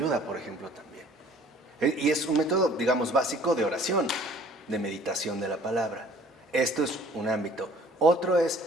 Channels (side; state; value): both; normal; correlation 0.53